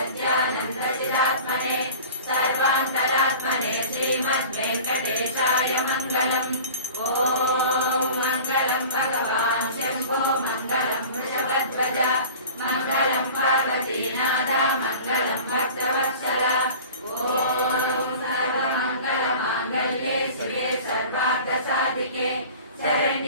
सर्वान्तरात्मने श्रीमद्वेङ्कटेशाय मङ्गलम् ॐ मङ्गलं भगवान् शम्भो मङ्गलं वृषभध्वज मङ्गलं पार्वतीनाथ मङ्गलं भक्तवत्सल ॐ सर्वमङ्गलमाङ्गल्ये शिवे सर्वार्थसाधिके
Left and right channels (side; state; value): both; inverted; correlation -0.40